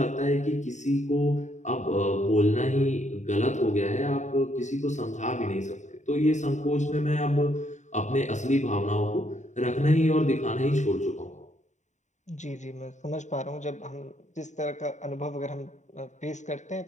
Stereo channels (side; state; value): right; late; 0.34 ms